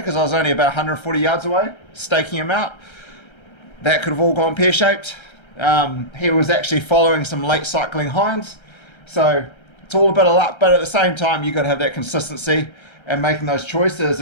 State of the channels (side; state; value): right; late; 1.3 ms